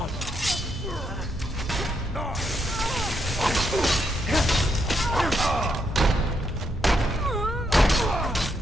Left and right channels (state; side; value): normal; both; correlation 0.78